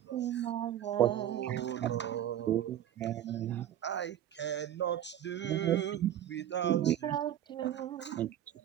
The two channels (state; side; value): quieter; left; 11.3 dB